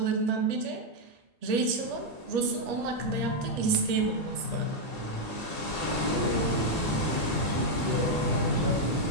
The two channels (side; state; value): both; normal; correlation 0.01